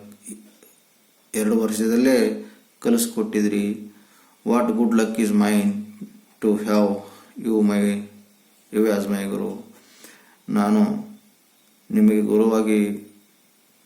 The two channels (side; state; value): both; identical; correlation 1.00